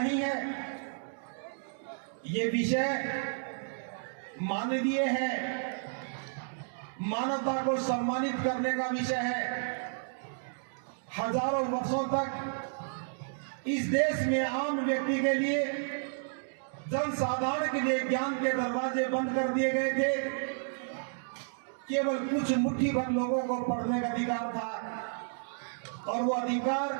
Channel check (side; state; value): left; silent; digital silence